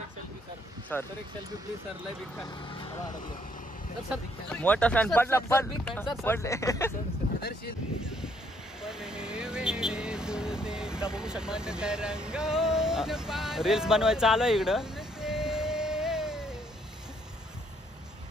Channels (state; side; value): normal; both; correlation 0.68